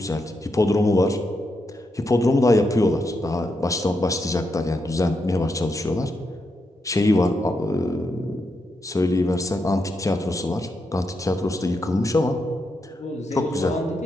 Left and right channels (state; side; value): normal; both; correlation 0.83